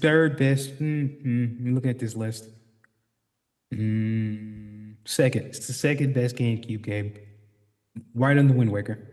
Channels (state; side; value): identical; both; correlation 1.00